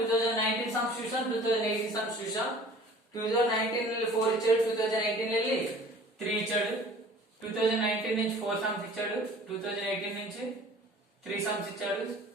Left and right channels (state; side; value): normal; both; correlation 0.47